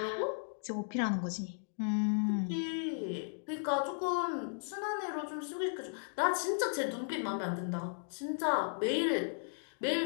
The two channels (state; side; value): silent; right; digital silence